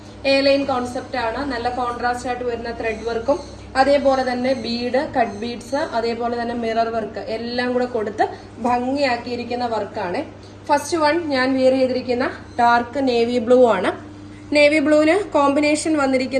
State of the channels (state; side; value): identical; both; correlation 1.00